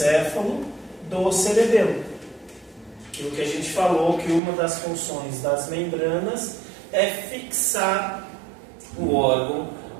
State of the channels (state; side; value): drops out; left; at 4.4 s